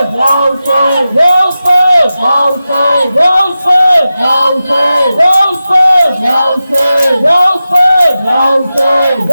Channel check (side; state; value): both; inverted; correlation -0.93